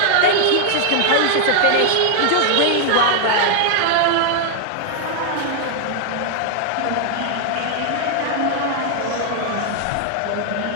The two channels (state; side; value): different; both; correlation 0.00